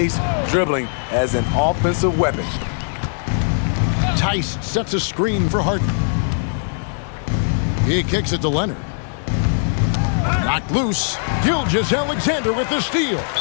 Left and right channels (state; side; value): silent; right; digital silence